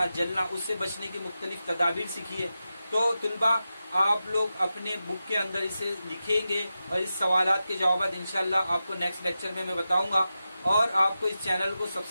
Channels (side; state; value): both; inverted; correlation -0.91